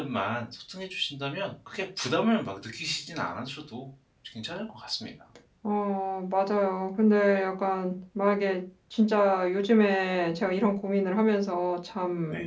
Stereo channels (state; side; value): identical; both; correlation 1.00